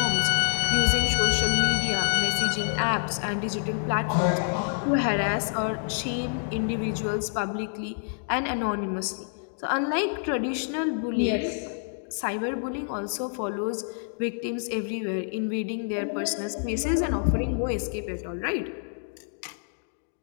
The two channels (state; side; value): silent; right; digital silence